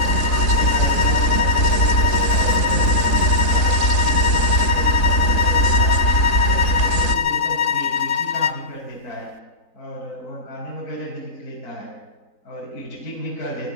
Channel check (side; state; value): right; late; 3.9 ms